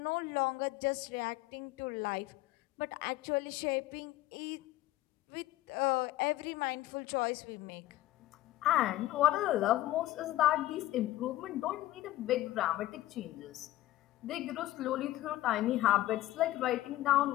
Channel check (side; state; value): right; quieter; 15.6 dB